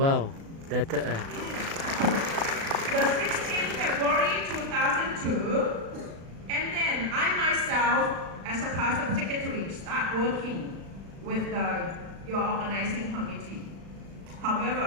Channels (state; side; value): late; left; 36 ms